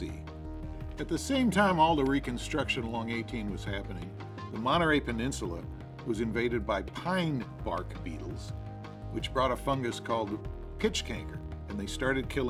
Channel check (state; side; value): identical; both; correlation 1.00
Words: At the same time all the reconstruction along 18 was happening, the Monterey Peninsula was invaded by pine bark beetles, which brought a fungus called pitch canker, and they started